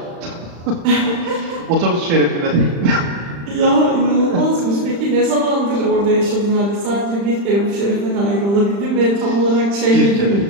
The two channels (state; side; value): late; left; 35 ms